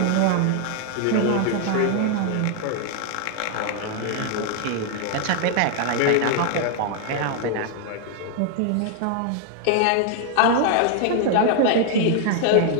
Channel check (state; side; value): different; both; correlation 0.00